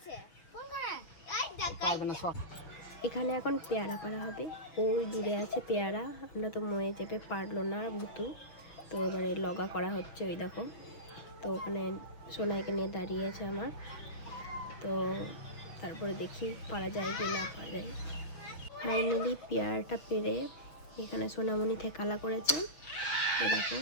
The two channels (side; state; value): right; late; 6.0 ms